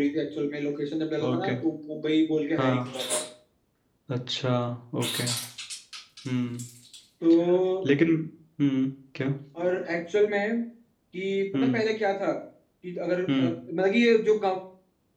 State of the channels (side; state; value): both; identical; correlation 1.00